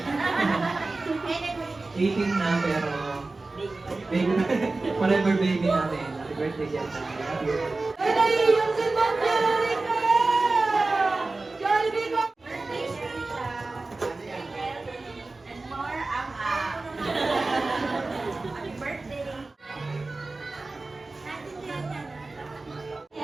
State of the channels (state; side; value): quieter; left; 3.4 dB